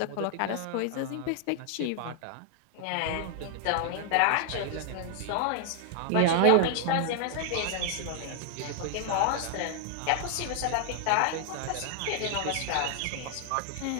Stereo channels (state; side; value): different; both; correlation 0.00